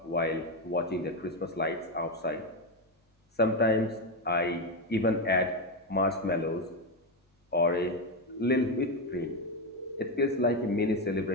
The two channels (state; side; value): normal; both; correlation 0.10